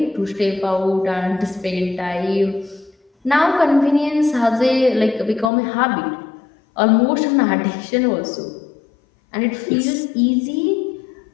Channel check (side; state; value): right; drops out; at 5.5 s